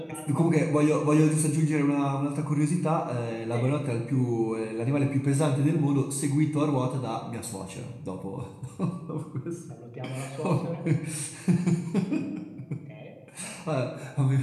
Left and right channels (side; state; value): both; identical; correlation 1.00